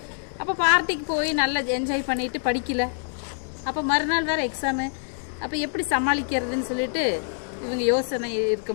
அப்போ பார்ட்டிக்கு போய் நல்லா என்ஜாய் பண்ணிட்டு படிக்கல. அப்போ மறுநாள் வேறு எக்ஸாமு. அப்போ எப்படி சமாளிக்கிறதுன்னு சொல்லிட்டு இவங்க யோசனை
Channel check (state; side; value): silent; right; 61 dB below the other